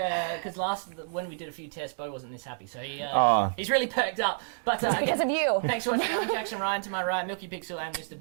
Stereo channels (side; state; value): left; silent; digital silence